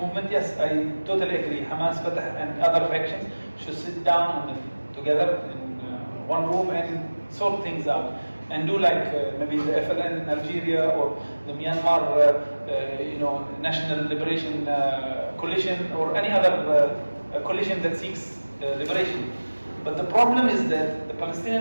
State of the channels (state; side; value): inverted; both; correlation -1.00